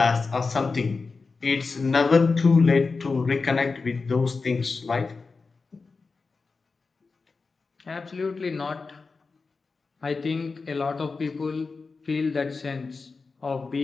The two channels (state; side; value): quieter; right; 4.3 dB